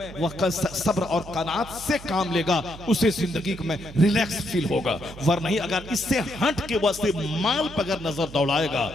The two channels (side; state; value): right; noise; hum, 15 dB below the sound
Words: वह सब्र और कनात से काम लेगा, उसे जिंदगी में रिलैक्स फील होगा। वरना अगर इससे हट के वह माल पर अगर नजर दौड़ाएगा,